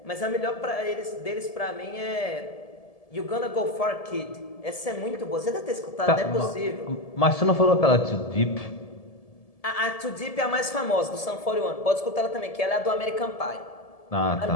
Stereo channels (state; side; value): late; right; 1.7 ms